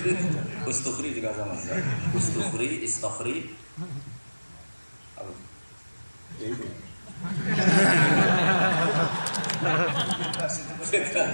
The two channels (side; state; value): both; inverted; correlation -1.00